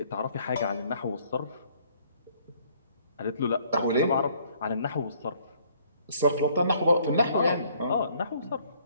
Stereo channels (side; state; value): both; inverted; correlation -0.62